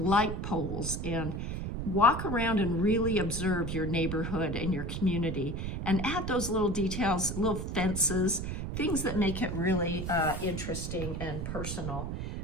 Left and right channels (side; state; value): right; noise; rumble, 4 dB below the sound